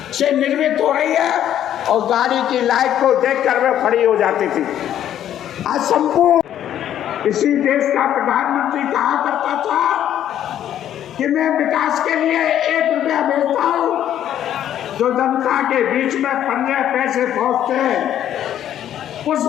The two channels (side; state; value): right; quieter; 10.9 dB